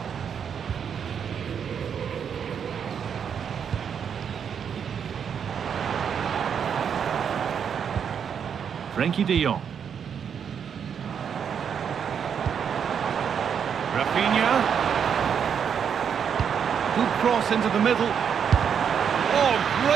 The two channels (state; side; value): quieter; left; 7.5 dB